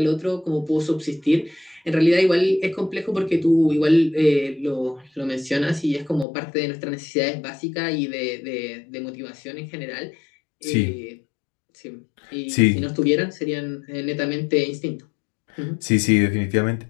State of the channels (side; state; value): right; drops out; at 6.2 s